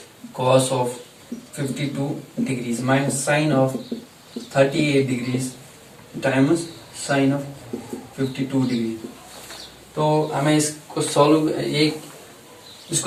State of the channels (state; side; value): identical; both; correlation 1.00